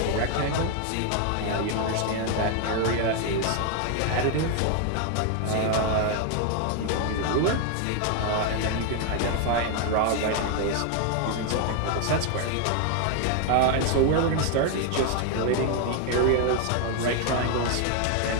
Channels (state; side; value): different; both; correlation 0.01